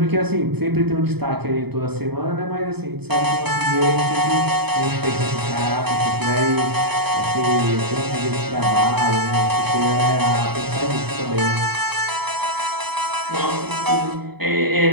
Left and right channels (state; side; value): late; left; 0.98 ms